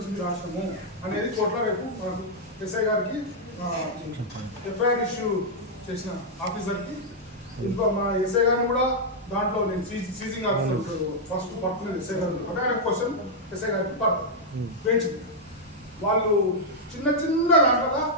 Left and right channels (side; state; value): both; normal; correlation -0.04